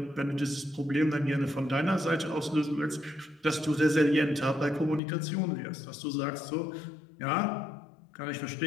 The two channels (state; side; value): drops out; right; at 5.0 s